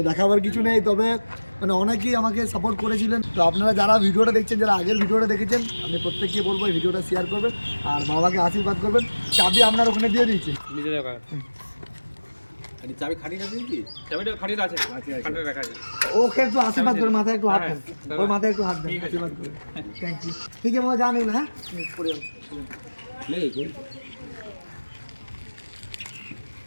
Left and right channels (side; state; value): both; inverted; correlation -1.00